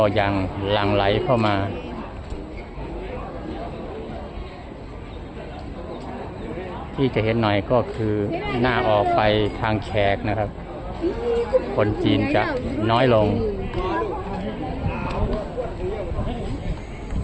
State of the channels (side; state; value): both; identical; correlation 1.00